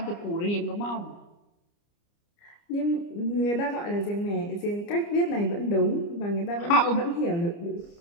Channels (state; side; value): late; right; 29 ms